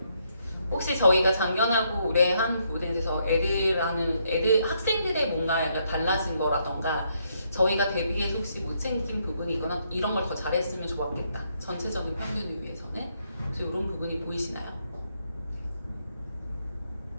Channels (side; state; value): both; inverted; correlation -0.75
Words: 혹시 저희가 작년하고 올해 한 부분에 대해서 학생들의 뭔가 약간 달라진 거라던가 저희가 대비해서 혹시 못 챙긴 부분이거나 이런 걸 더 잘했으면 좋았겠다. 전체적인 평균을 위해서는. 그래서 이런 부분이 보이시나요?